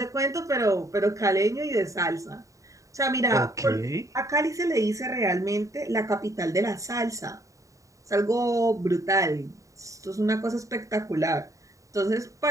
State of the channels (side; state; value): left; late; 0.16 ms